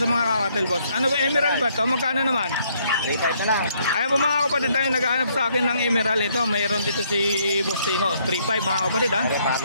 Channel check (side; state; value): both; inverted; correlation -0.69